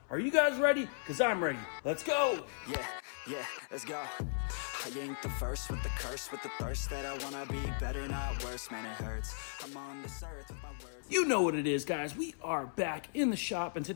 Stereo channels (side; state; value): right; silent; 53 dB below the other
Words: Are you guys ready? Because I'm ready. Let's go. Yeah, let's go. I ain't the first with the curse, with the thirst that I wanna be better, not worse. Man, it hurts. I'm on this earth with my words. You know what it is, guys. We are back in the shop, and